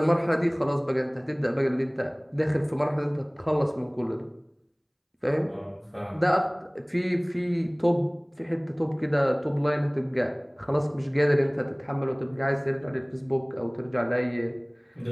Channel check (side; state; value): both; identical; correlation 1.00